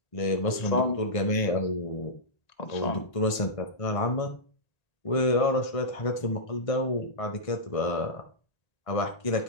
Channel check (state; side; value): late; right; 1.5 ms